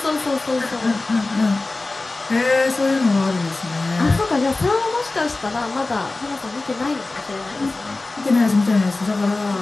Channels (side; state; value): right; quieter; 3.2 dB